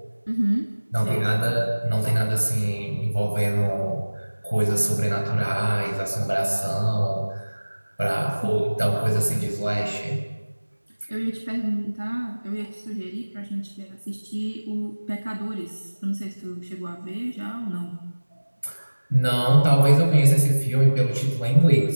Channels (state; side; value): inverted; both; correlation -1.00